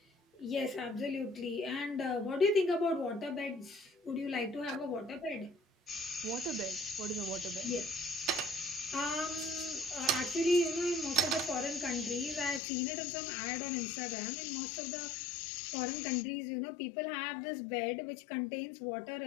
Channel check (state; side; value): drops out; right; at 12.6 s